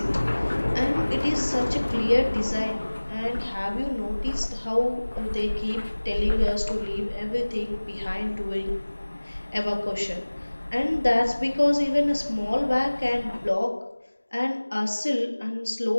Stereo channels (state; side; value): inverted; both; correlation -1.00